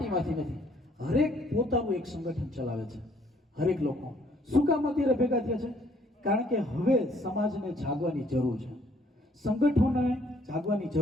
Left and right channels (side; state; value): both; normal; correlation 0.64